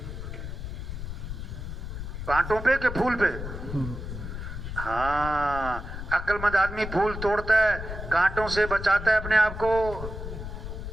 کانٹوں پہ کہ پھول پہ؟ ہاں، عقل مند آدمی پھول توڑتا ہے، کانٹوں سے بچاتا ہے اپنے آپ کو.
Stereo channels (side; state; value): left; noise; rumble, 7 dB below the sound